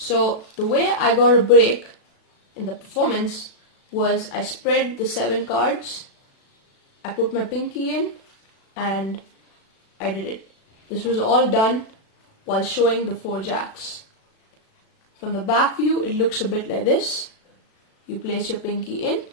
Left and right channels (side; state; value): right; late; 36 ms